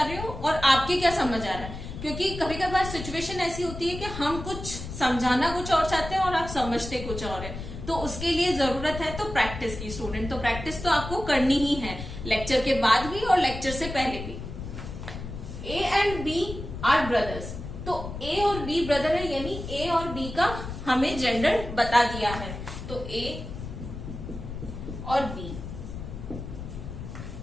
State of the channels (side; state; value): left; noise; rumble, 9 dB below the sound